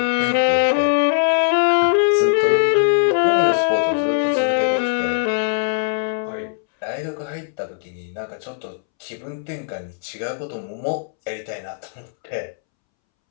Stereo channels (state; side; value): silent; right; 65 dB below the other